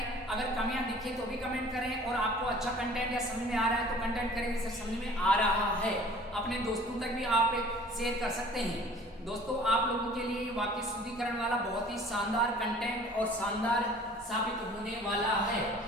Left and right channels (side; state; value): both; normal; correlation 0.48